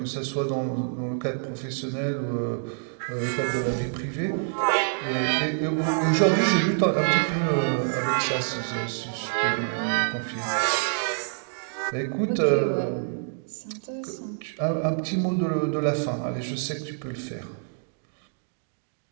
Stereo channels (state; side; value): silent; left; digital silence